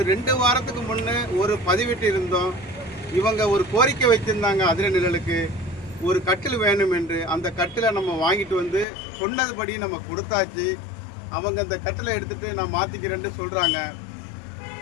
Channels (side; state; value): right; drops out; at 8.8 s